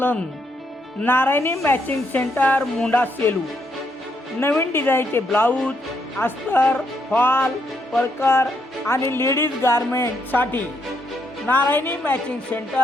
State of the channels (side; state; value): both; normal; correlation 0.76